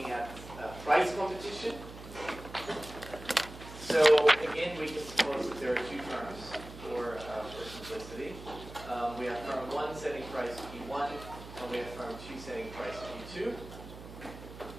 at price competition. So again, we can suppose that there are two firms for simplicity. We have firm 1 setting price P1, and we have firm 2 setting price P2.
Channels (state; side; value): noise; right; hum, 14 dB below the sound